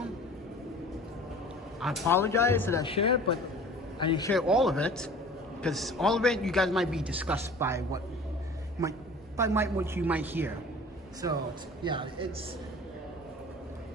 I apologize that I shared, but I didn't share all of it, because all of it you guys might be disgusted by what you might hear. So yeah, it's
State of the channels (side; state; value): both; normal; correlation 0.44